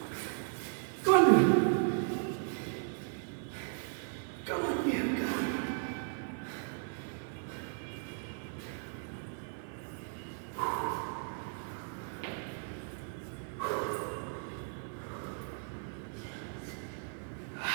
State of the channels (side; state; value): left; silent; 54 dB below the other